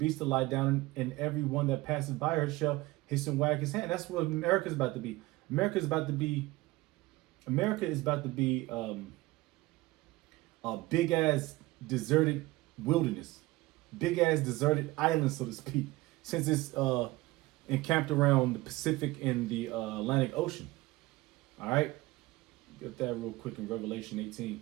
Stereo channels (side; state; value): left; quieter; 20.0 dB